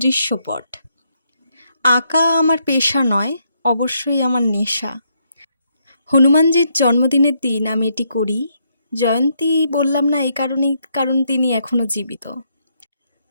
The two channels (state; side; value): inverted; both; correlation -0.76